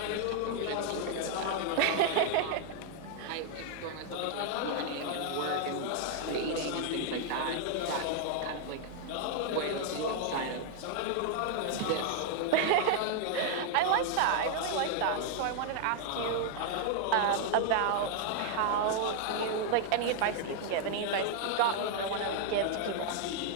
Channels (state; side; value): different; both; correlation 0.00